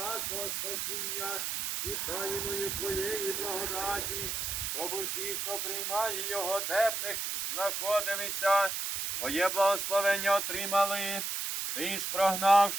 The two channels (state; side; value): noise; right; hiss, 2 dB below the sound